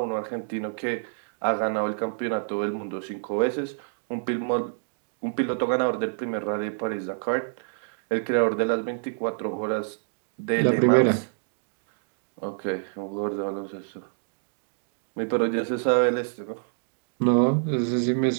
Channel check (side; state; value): left; silent; digital silence